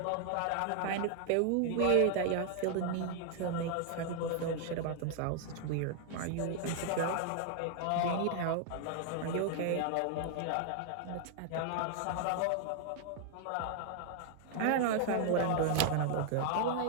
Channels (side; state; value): both; different; correlation 0.00